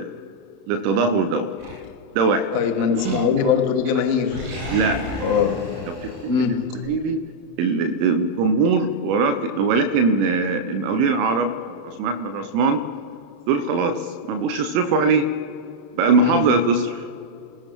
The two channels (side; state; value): left; late; 31 ms